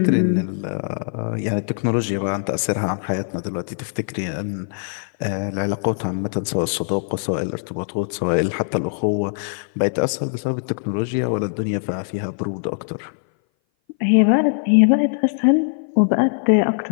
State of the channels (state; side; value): silent; right; 59 dB below the other